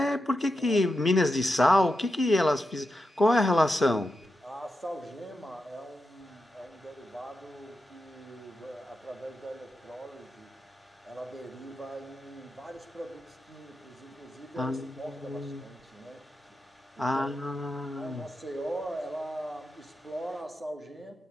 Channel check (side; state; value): both; normal; correlation 0.88